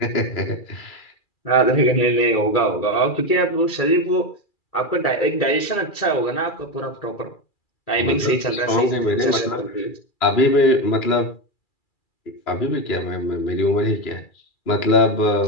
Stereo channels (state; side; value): late; right; 2.4 ms